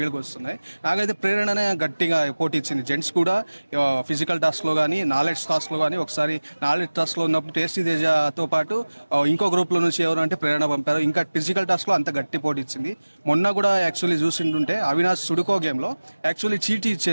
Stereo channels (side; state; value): both; inverted; correlation -1.00